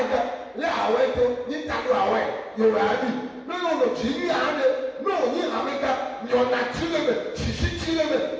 lé awɛ to ní ta do awɛ yorùbá bi ní yóò lò tsi ní yàrá de ní òní amega nyɔna tsi lé mɛ sisi tsi lé mɛ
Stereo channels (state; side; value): identical; both; correlation 1.00